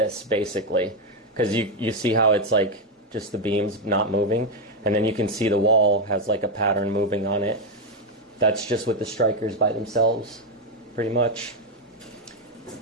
basically. Because you see how it's like just the beams not moving. And then you can see the wall has like a pattern moving on it. That's just with the strikers by themselves, pretty much.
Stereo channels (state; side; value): normal; both; correlation 0.05